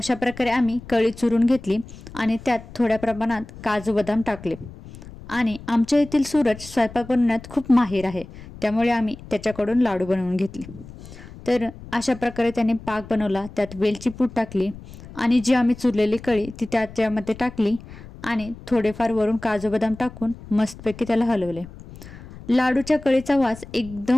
प्रकारे आम्ही कळी चुरून घेतली आणि त्यात थोड्या प्रमाणात काजू बदाम टाकले. आणि आमच्या येथील सूरज स्वयंपाक बनवण्यात खूप माहिर आहे, त्यामुळे आम्ही त्याच्याकडून लाडू बनवून घेतले. तर अशा प्रकारे त्याने पाक बनवला, त्यात वेलची पूड टाकली आणि जी आम्ही चुरलेली कळी ती त्याच्यामध्ये टाकली आणि थोडेफार वरून काजू बदाम टाकून मस्तपैकी त्याला हलवले. लाडूच्या कळीचा वास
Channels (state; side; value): noise; left; rumble, 16 dB below the sound